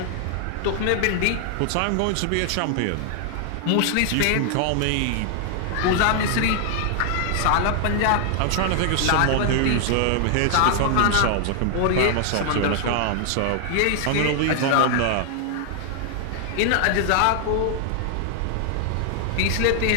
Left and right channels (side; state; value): both; different; correlation 0.00